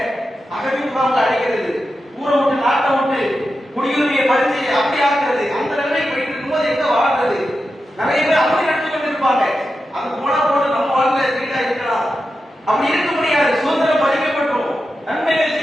அகதி முகாம்ல அடைக்கிறது, ஊரை விட்டு நாட்டை விட்டு குடியுரிமையை பறிச்சு அப்படி ஆக்குறது, அந்த நிலைமை போயிட்டு இருக்கும்போது எங்க வாழ்றது? நிறைய பேர் அப்படி நடத்தி கொண்டு இருப்பாங்க. அது போனா போது நம்ம வாழ்ல வீடா இருக்கலாம், அப்படி இருக்க முடியாது. சுதந்திரம் பறிக்கப்பட்டோம், நன்மைகள்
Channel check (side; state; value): both; normal; correlation 0.90